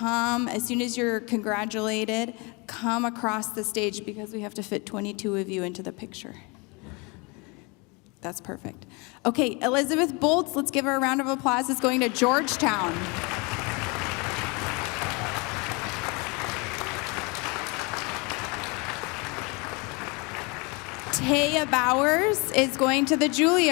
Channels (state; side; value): quieter; right; 29.1 dB